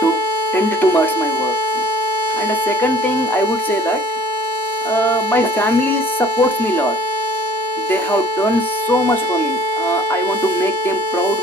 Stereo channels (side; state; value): both; normal; correlation 0.53